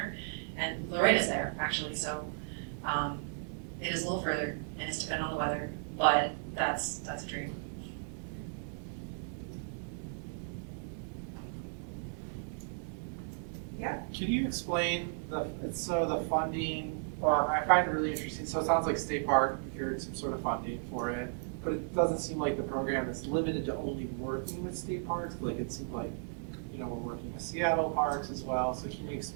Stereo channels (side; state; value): left; silent; digital silence